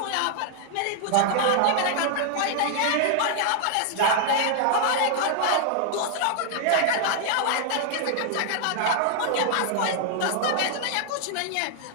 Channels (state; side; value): different; both; correlation 0.00